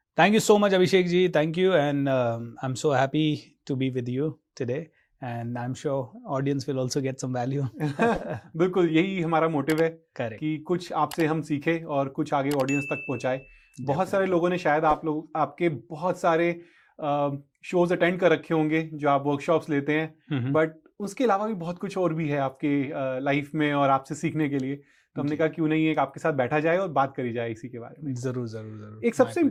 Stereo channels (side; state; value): both; identical; correlation 1.00